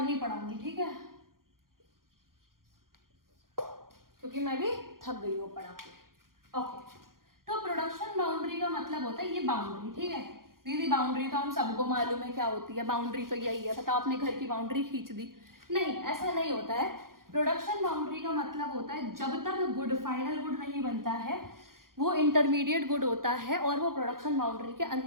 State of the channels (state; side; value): late; left; 0.91 ms